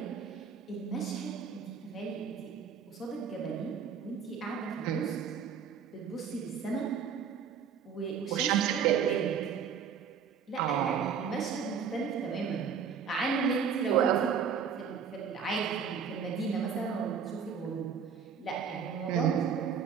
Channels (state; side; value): quieter; left; 6.9 dB